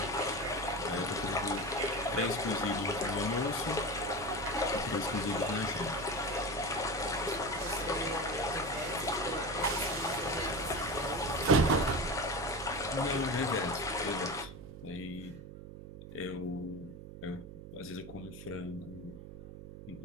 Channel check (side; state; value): right; noise; hum, 13 dB below the sound